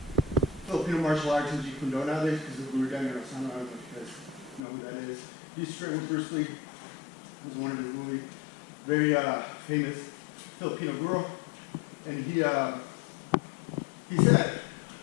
Filipino martial arts in Jiu-Jitsu nowadays because of Guro. I don't know if you guys know who that is. He used to train with Bruce Lee. It was one of his really very famous Filipino Guro. And he said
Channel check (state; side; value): drops out; right; at 4.6 s